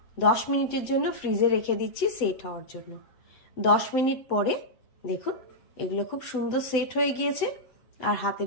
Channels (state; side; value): late; right; 8.2 ms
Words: 10 মিনিটের জন্য ফ্রিজে রেখে দিচ্ছি সেট হওয়ার জন্য। 10 মিনিট পরে দেখুন এগুলো খুব সুন্দর সেট হয়ে গিয়েছে। আর